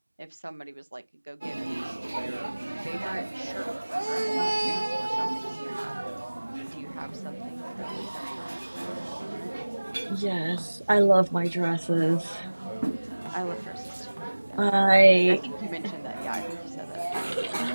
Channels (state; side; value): inverted; both; correlation -1.00